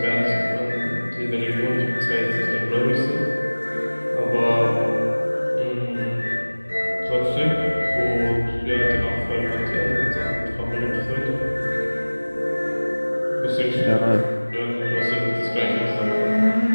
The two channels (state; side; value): inverted; both; correlation -1.00